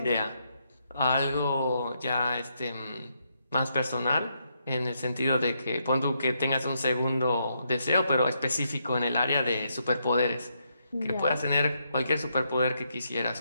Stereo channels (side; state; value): both; inverted; correlation -0.78